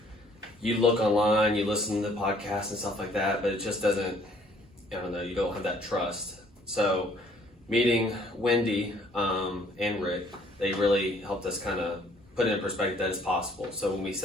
you look online, you listen to podcasts and stuff like that, but it just doesn't, I don't know, you don't have that trust. So meeting Wendy and Rick, they really helped us kind of put it in perspective that it's possible. So when we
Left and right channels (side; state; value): both; normal; correlation 0.61